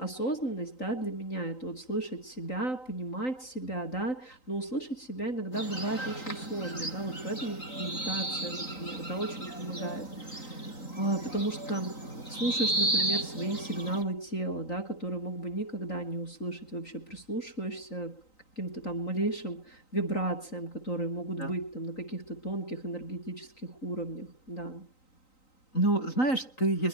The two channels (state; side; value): late; right; 3.9 ms